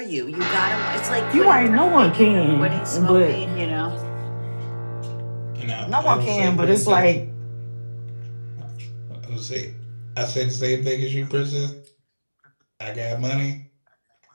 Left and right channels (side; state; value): both; inverted; correlation -1.00